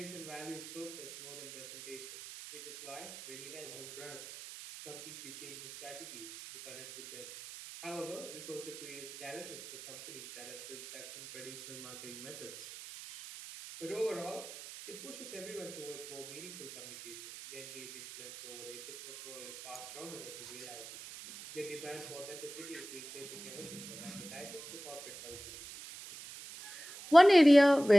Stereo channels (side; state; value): right; noise; hiss, 12 dB below the sound